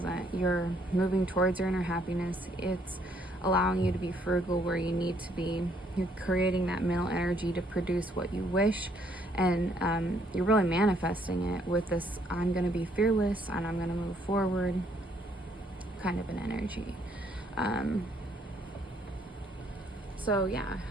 You're moving towards your inner happiness. It's allowing you to be frugal where you need to be. You're creating that mental energy to produce what you wish, and you're really manifesting it with this I'm going to be fearless and I'm going to move forward kind of an energy. So yeah,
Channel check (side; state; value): both; normal; correlation 0.68